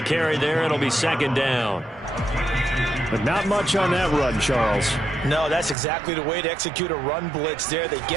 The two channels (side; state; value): left; drops out; at 5.8 s